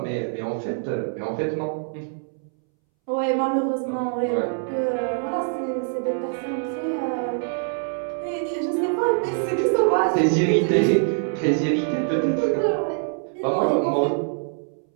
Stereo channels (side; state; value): left; silent; 63 dB below the other